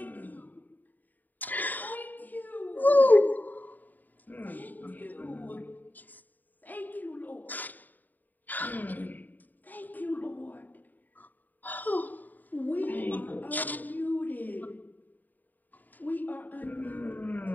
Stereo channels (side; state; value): right; late; 0.086 ms